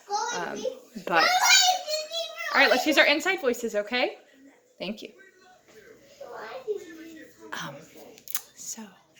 But all right, let's use our inside voices, okay? Thank you. So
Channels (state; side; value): identical; both; correlation 1.00